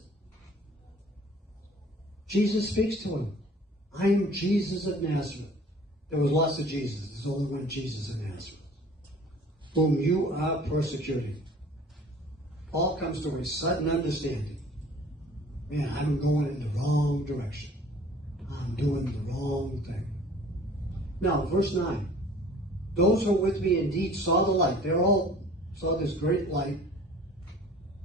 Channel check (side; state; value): both; normal; correlation 0.49